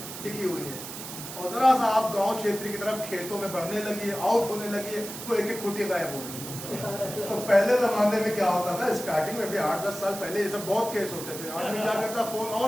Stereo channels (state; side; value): noise; right; hiss, 10 dB below the sound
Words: ٹکی ہوئی ہیں. اور ذرا سا آپ گاؤں چھیتر کی طرف کھیتوں میں بڑھنے لگیے، آؤٹ ہونے لگیے، وہ ایک ایک کھوٹی غائب ہو گئی. تو پہلے زمانے میں کیا ہوتا تھا، اسٹارٹنگ میں بھی 8-10 سال پہلے یہ سب بہت کیس ہوتے تھے. آدمی کیا کرتا، فون